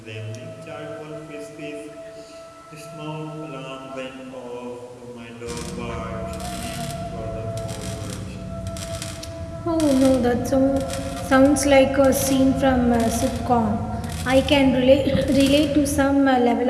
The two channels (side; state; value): both; identical; correlation 1.00